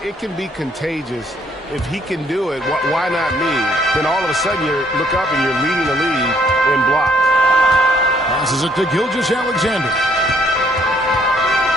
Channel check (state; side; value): normal; both; correlation 0.65